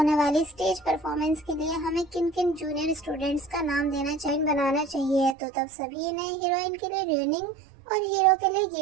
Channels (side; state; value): left; drops out; at 5.4 s